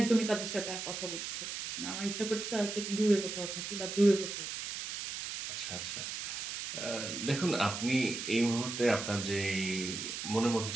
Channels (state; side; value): noise; right; hiss, 5 dB below the sound